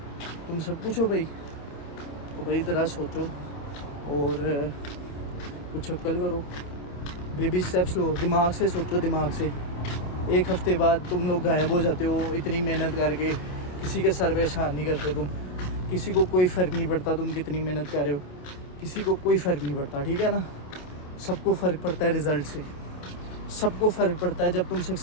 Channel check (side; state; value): right; late; 28 ms